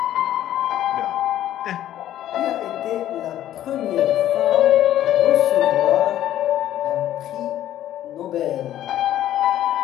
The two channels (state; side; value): quieter; right; 12.4 dB